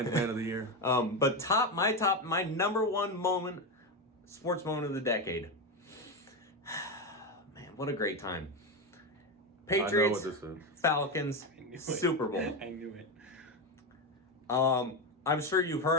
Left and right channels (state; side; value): normal; both; correlation 0.13